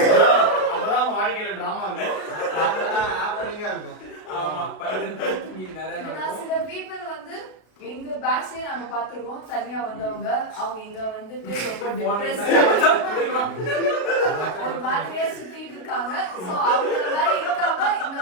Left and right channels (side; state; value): right; late; 32 ms